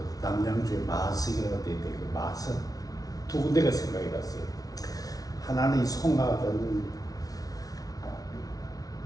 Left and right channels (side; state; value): right; late; 0.18 ms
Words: 남양주에 마석이라고 돼 있는데 그 마석 두 군데가 생각이 났어요. 하나는 이 송악은